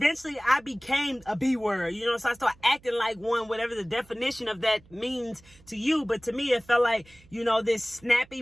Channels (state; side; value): noise; right; hum, 27 dB below the sound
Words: I became a B word, so I started acting like one, whatever the definition of that means to you. But to me, it felt like, this snappy,